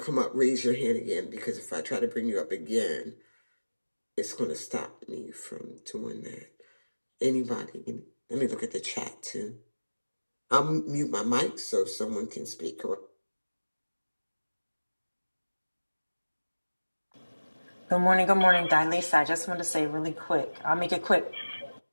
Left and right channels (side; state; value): both; inverted; correlation -1.00